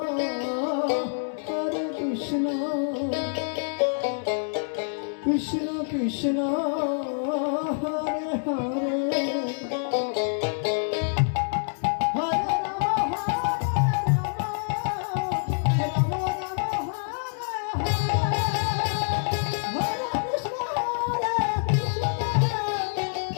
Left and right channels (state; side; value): silent; right; 61 dB below the other